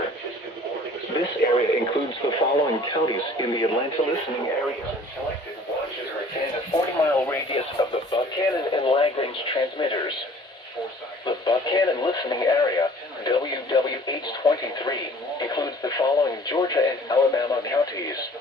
This area includes the following counties in the Atlanta listening area. Selected watches within a 40-mile radius of the Buchanan and Lagrange transmitters. The Buchanan listening area, WWH-23, includes the following Georgia and Alabama counties:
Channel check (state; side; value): normal; both; correlation 0.51